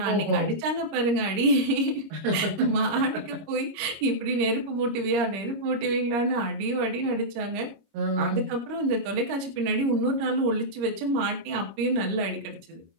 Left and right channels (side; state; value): left; late; 26 ms